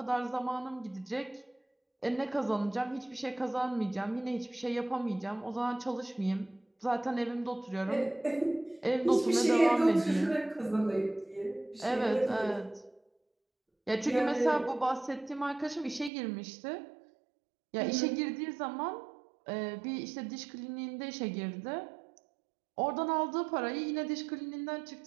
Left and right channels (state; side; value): drops out; left; at 16.1 s